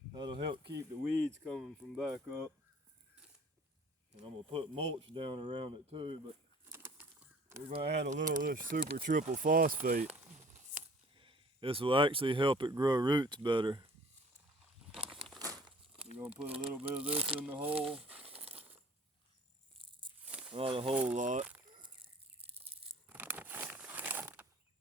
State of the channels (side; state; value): both; normal; correlation 0.52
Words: That'll help keep the weeds coming from back up. And I'm going to put mulch down around it too, but we're going to add a little of this super triple phosphate. This will actually help it grow roots better. We're going to put a little bit of this in the hole. Not a whole lot.